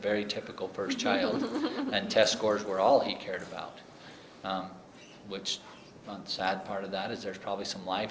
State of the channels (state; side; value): identical; both; correlation 1.00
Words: typical first child, and test scores were all he cared about. Which, the sad part of that is there's probably some life